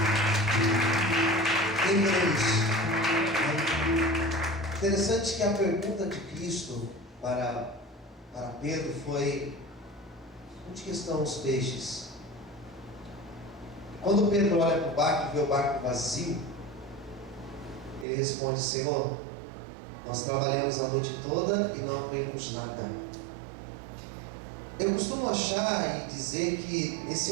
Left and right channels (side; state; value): left; drops out; at 18.1 s